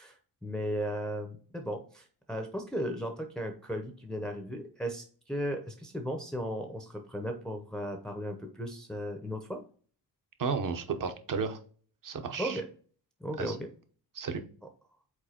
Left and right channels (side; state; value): both; normal; correlation 0.49